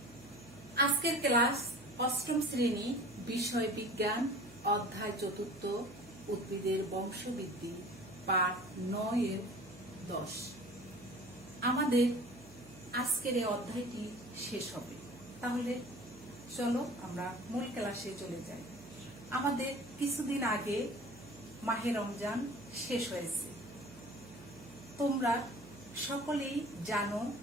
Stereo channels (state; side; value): noise; right; hum, 20 dB below the sound